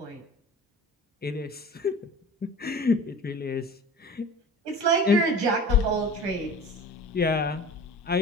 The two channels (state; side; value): normal; both; correlation 0.39